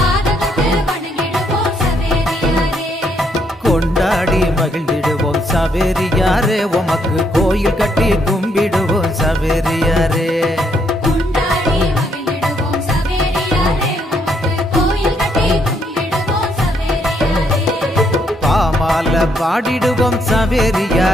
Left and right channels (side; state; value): both; normal; correlation 0.74